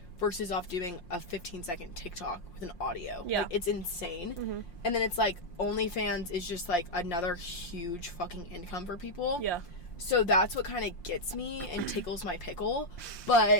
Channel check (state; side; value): late; right; 5.7 ms